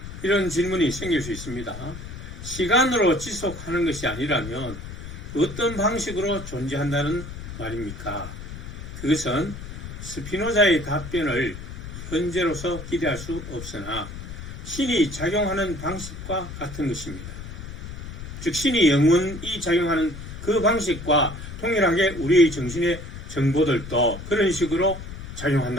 이런 질문이 생길 수 있습니다. 시간으로 지속하는 것이 아니라면 어떤 방식으로 존재한다는 말입니까? 그것은 스피노자의 답변을 현재로서 기대할 수 없으나 신이 작용하는 방식과 같은 것입니다. 즉 신이 영원히 작용하는 그 방식과 동일하게 우리의 정신의 정보들도 그런 식으로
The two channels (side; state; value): left; noise; rumble, 10 dB below the sound